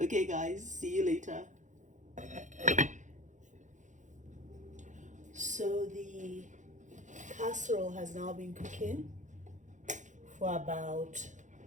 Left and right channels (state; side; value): late; left; 0.36 ms